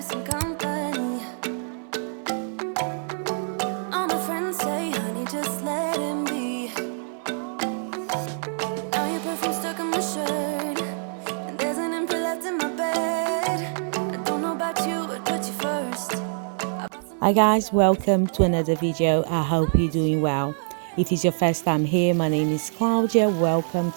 some company. All my friends say, honey, just let him be. Now your perfume stuck on my shirt, and there's an empty left in my bed. I don't know about you, but put you first. Hi guys, welcome to another video. I hope you're doing well. If it's your first time here, my name is Claudia. Welcome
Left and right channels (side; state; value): left; silent; 59 dB below the other